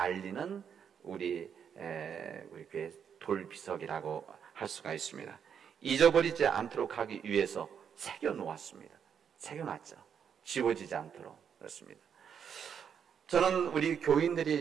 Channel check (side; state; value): left; quieter; 7.7 dB